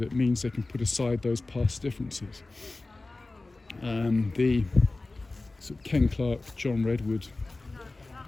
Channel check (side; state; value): right; quieter; 3.2 dB